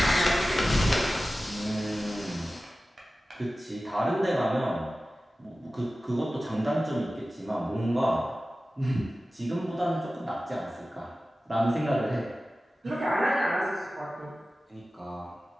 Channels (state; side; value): normal; both; correlation 0.96